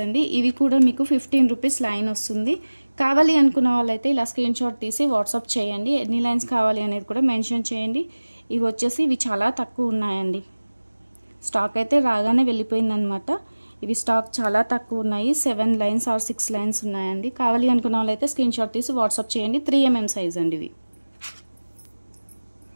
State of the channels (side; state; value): both; inverted; correlation -1.00